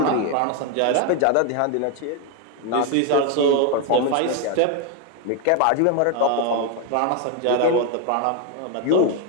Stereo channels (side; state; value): both; different; correlation 0.01